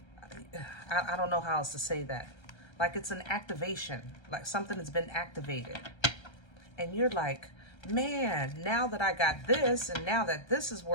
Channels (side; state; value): right; late; 1.3 ms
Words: I don't know how else to say that. Like it's an activation, like something that's been activated. And you're like, man, now that I got this, and now that this is